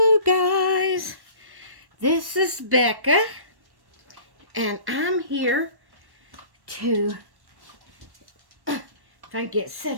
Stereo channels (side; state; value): left; late; 1.1 ms